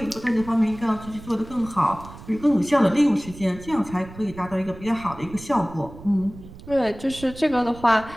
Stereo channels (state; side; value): noise; right; rumble, 16 dB below the sound